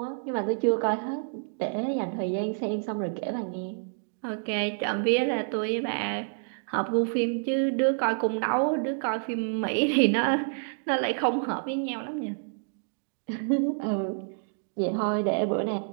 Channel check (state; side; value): silent; left; digital silence